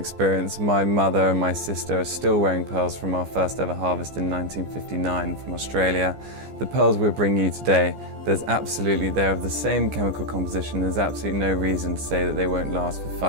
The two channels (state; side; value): late; left; 15 ms